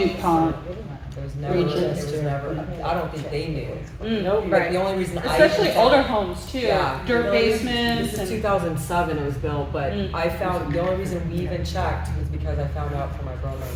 It was never, I don't think they knew. Like, right. the only reason Especially older homes too, Yeah. dirt basements This and. is 2007 it was built, but I found, the only reason we even checked was because I found out from my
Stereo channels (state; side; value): identical; both; correlation 1.00